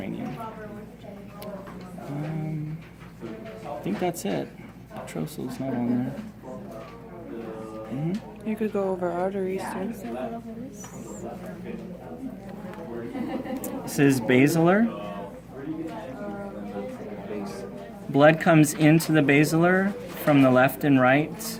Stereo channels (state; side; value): identical; both; correlation 1.00